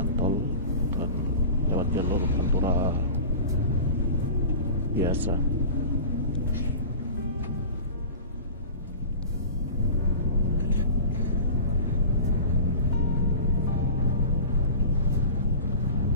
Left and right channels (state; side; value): inverted; both; correlation -0.37